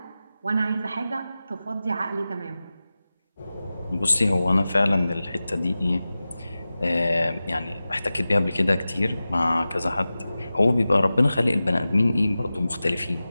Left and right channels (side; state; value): both; inverted; correlation -0.95